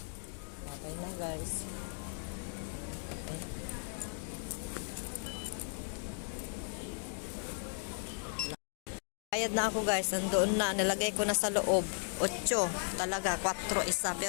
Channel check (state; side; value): silent; right; 54 dB below the other